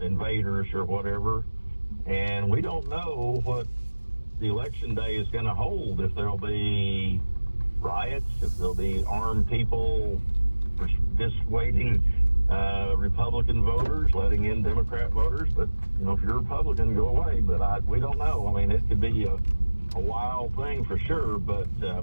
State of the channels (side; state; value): both; inverted; correlation -1.00